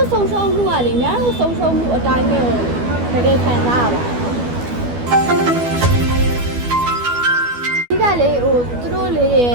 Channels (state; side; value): late; left; 12 ms